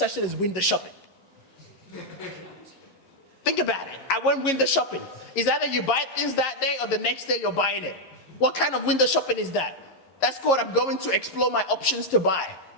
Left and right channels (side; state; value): right; late; 11 ms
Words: thing as window shopping. Think about it. I went window shopping. It's either you buy things that day or the next day you're buying it. What kind of window shopping is that? That's called I'm going to explore my options to buy.